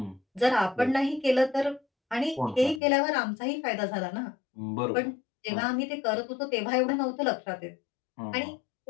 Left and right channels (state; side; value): drops out; right; at 2.8 s